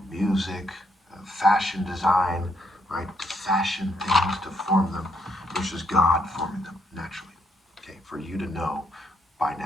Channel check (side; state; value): both; normal; correlation 0.74